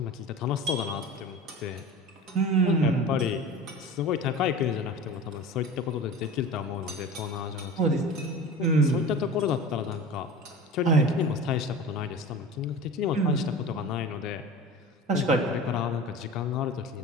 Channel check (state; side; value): normal; both; correlation 0.35